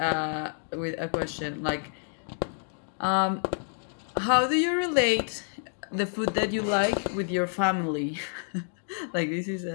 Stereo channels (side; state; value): right; silent; digital silence